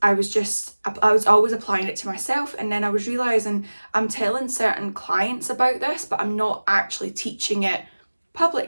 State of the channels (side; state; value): both; inverted; correlation -1.00